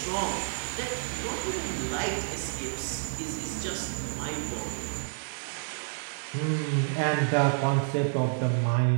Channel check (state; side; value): silent; left; 58 dB below the other